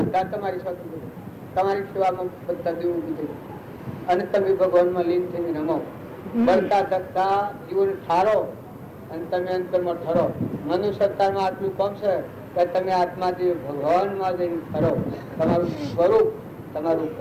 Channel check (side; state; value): both; identical; correlation 1.00